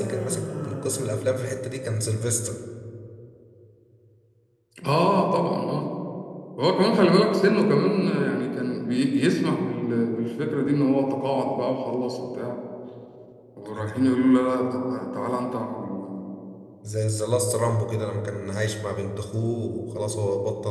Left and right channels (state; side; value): identical; both; correlation 1.00